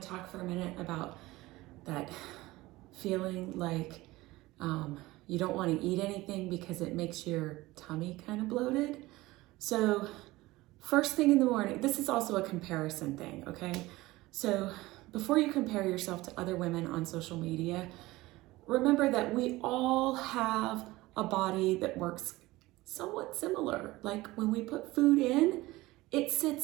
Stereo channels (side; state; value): left; quieter; 19.2 dB